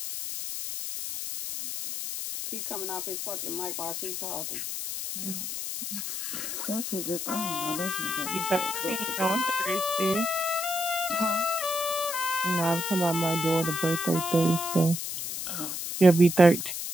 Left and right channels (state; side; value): noise; left; hiss, 4 dB below the sound